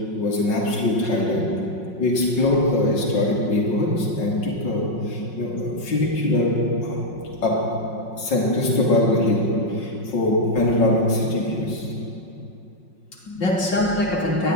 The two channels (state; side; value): late; right; 5.5 ms